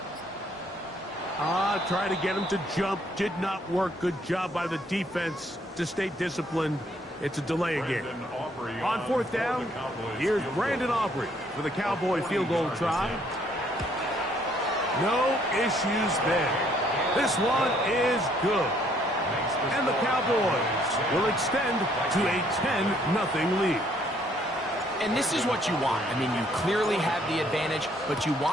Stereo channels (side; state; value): both; normal; correlation 0.66